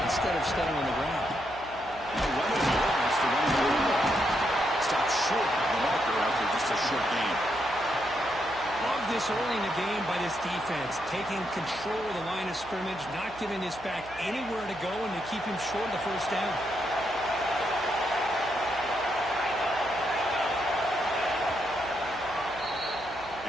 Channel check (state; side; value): noise; right; hum, 19 dB below the sound